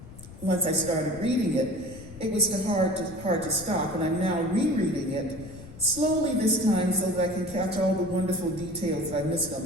Once I started reading it, it was hard to stop, and I'm now rereading it slowly this time so that I can catch all the wonderful details that I missed on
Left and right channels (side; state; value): left; noise; rumble, 17 dB below the sound